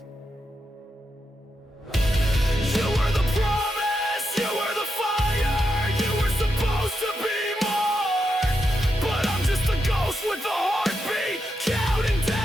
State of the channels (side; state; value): both; normal; correlation 0.85